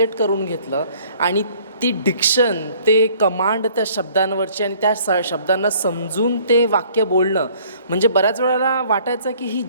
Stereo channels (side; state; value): both; inverted; correlation -0.57